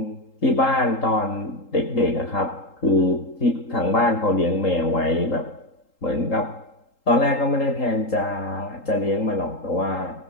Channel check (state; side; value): late; right; 3.8 ms